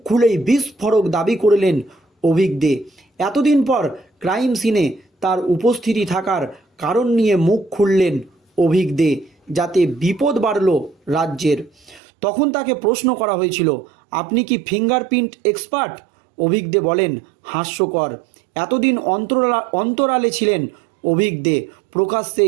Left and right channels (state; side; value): drops out; left; at 12.0 s